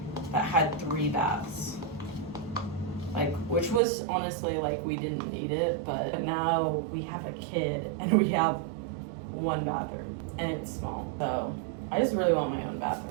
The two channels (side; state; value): left; drops out; at 3.8 s